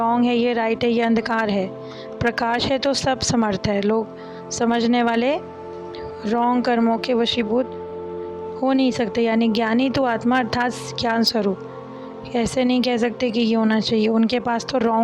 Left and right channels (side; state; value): both; identical; correlation 1.00